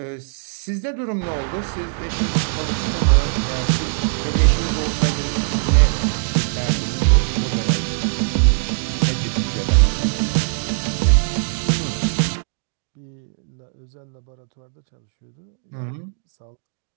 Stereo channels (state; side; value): silent; left; digital silence